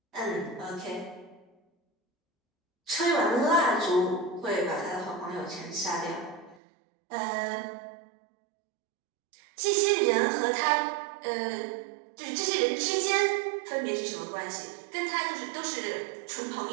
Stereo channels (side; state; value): left; drops out; at 6.6 s